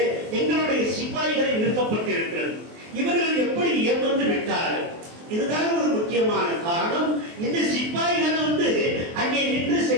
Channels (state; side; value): late; left; 23 ms